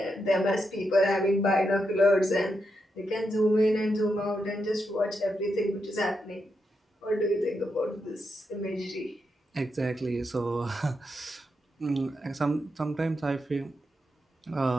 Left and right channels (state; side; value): normal; both; correlation 0.84